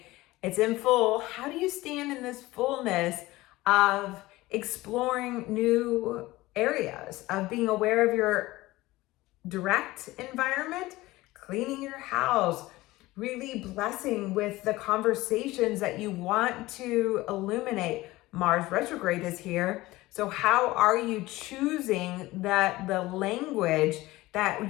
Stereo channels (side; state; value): right; quieter; 18.8 dB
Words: It's in full. How do you stand in this fullness of exploring new areas, of being aware of your direct environment, cleaning your house, really blessing with the conversations that you want to illuminate? Mars retrograde is here. So how are you choosing the language